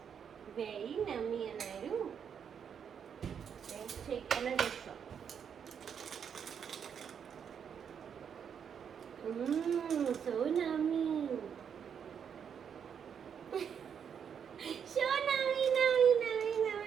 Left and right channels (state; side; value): quieter; left; 7.6 dB